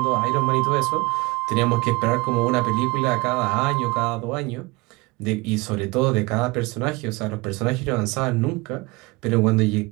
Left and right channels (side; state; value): left; quieter; 24.1 dB